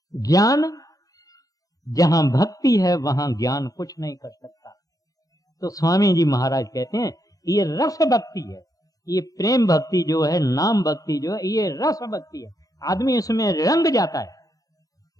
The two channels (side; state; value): right; late; 0.17 ms